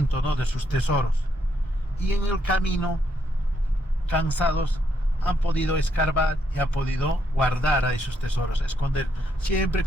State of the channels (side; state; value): both; normal; correlation 0.76